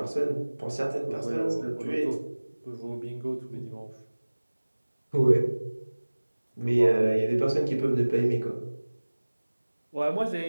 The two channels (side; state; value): both; inverted; correlation -1.00